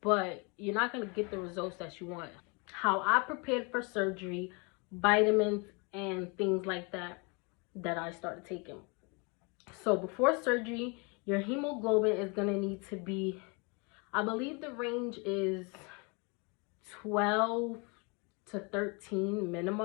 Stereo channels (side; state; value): right; quieter; 31.5 dB